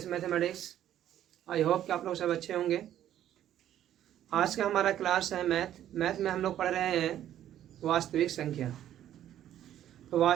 mathematics. I hope कि आप लोग सब अच्छे होंगे। आज का हमारा क्लास है मैथ में हम लोग पढ़ रहे हैं वास्तविक संख्या। तो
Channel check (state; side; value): quieter; left; 11.5 dB